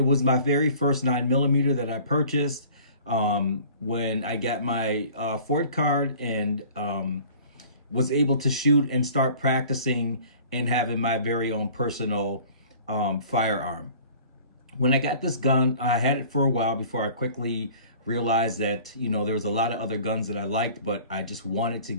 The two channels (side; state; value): both; inverted; correlation -0.47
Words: was my very first 9mm that I purchased when I got my Ford card and was able to shoot and start practicing and having my very own personal firearm. When I got this gun, I had it for a while before I quickly realized that, you know, there was a lot of other guns that I liked, but I just wanted to